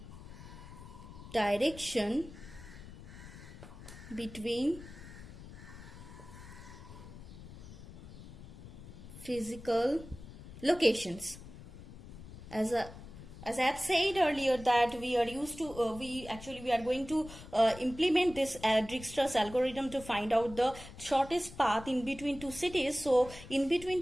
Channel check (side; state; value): left; noise; rumble, 15 dB below the sound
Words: direction between physical locations. As as I have said earlier that we are used to we are going to implement this Dijkstra's algorithm to find out the shortest path in between two cities. So in